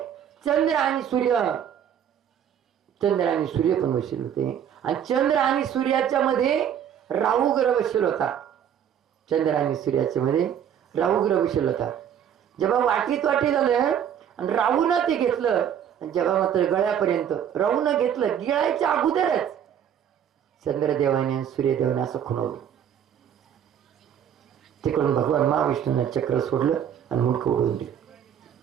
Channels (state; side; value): quieter; left; 9.2 dB